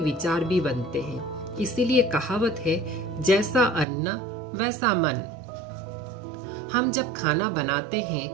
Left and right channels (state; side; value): drops out; left; at 3.9 s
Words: भी बनते हैं। इसीलिए कहावत है, जैसा अन्न वैसा मन। हम जब खाना बनाते हैं,